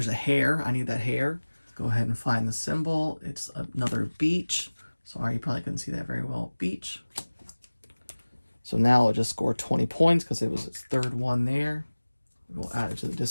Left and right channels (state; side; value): inverted; both; correlation -1.00